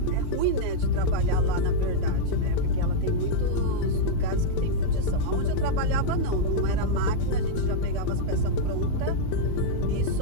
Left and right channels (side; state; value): both; different; correlation -0.03